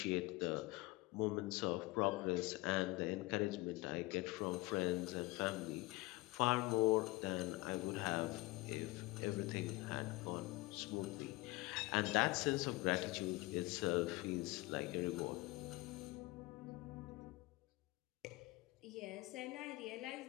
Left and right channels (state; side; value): quieter; right; 21.5 dB